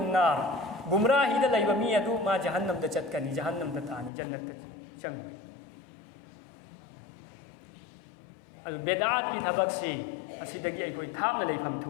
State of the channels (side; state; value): right; drops out; at 4.1 s